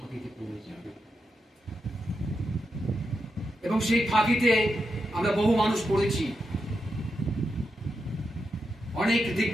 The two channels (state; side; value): normal; both; correlation 0.86